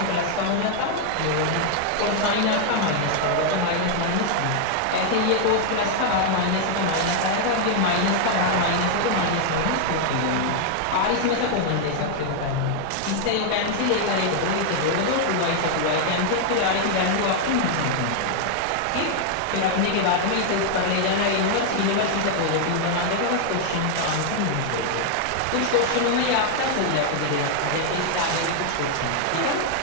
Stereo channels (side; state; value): both; different; correlation 0.00